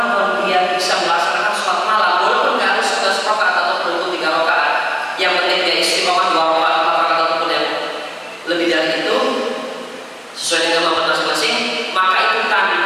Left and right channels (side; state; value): both; identical; correlation 1.00